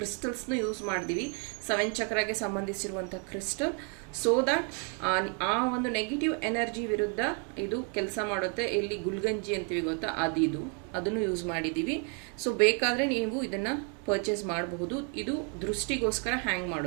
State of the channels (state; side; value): quieter; left; 37.7 dB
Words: ಯೂಸ್ ಮಾಡಿದ್ದೀವಿ, 7 ಚಕ್ರಗೆ ಸಂಬಂಧಿಸಿರುವಂಥ ಕ್ರಿಸ್ಟಲ್. ಸೊ ದಟ್ ಆ ಒಂದು ನೆಗೆಟಿವ್ ಎನರ್ಜಿ ವಿರುದ್ಧ ಇದು ಕೆಲಸ ಮಾಡುತ್ತೆ. ಇಲ್ಲಿ ಗುಲ್ಗಂಜಿ ಅಂತೀವಿ ಗೊತ್ತಾ, ಅದನ್ನು ಯೂಸ್ ಮಾಡಿದ್ದೀವಿ. ಸೊ ಬೇಕಾದರೆ ನೀವು ಇದನ್ನು ಪರ್ಚೇಸ್ ಮಾಡಬಹುದು. ಇದು ದೃಷ್ಟಿಗೋಸ್ಕರ ಹ್ಯಾಂಗ್